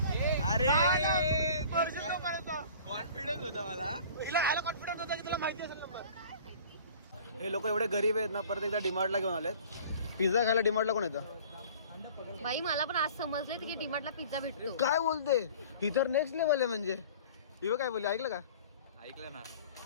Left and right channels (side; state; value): both; inverted; correlation -0.46